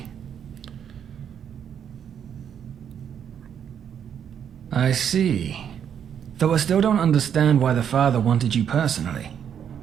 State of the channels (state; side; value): quieter; left; 8.5 dB